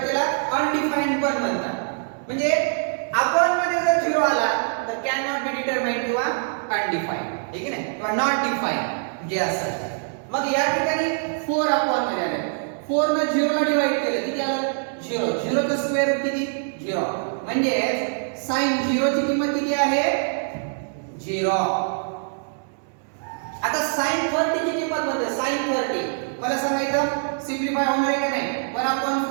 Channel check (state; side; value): silent; left; digital silence